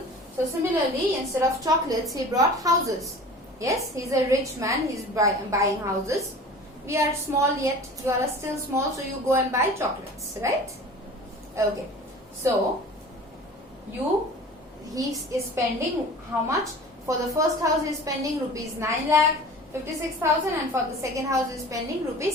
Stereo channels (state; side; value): normal; both; correlation 0.40